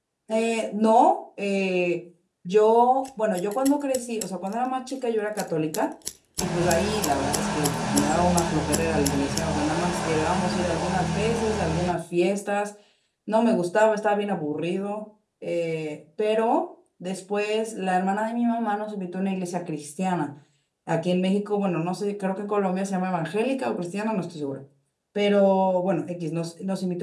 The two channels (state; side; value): identical; both; correlation 1.00